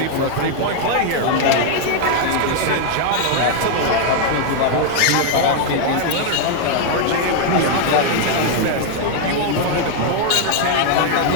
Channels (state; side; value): different; both; correlation 0.00